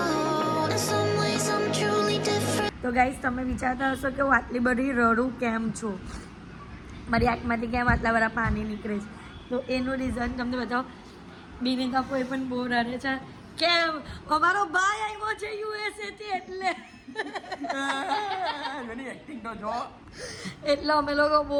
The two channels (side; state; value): both; identical; correlation 1.00